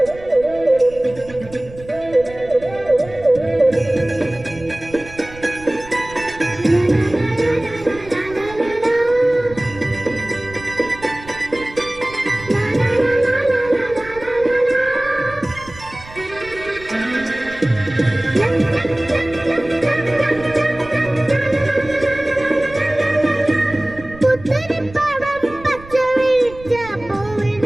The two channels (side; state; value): right; noise; rumble, 18 dB below the sound